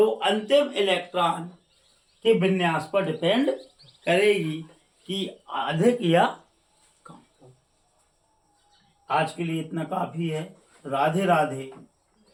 अंतिम इलेक्ट्रॉन के विन्यास पर डिपेंड करेगी कि अधिक या कम। आज के लिए इतना काफी है। राधे राधे,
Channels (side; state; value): both; identical; correlation 1.00